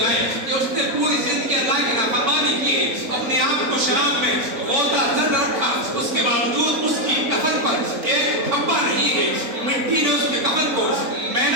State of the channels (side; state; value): left; late; 3.9 ms